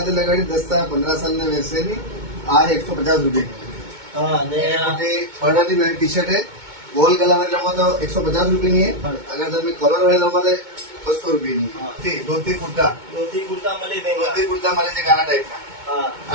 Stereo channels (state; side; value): late; left; 2.2 ms